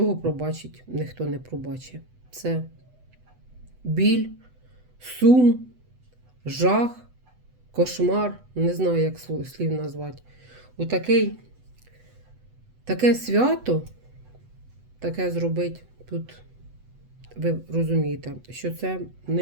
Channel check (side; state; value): left; late; 8.0 ms